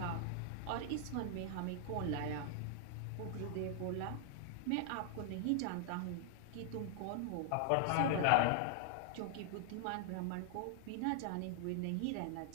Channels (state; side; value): different; both; correlation -0.01